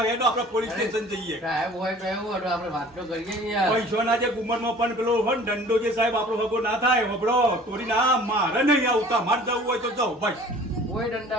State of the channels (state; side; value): normal; both; correlation 0.47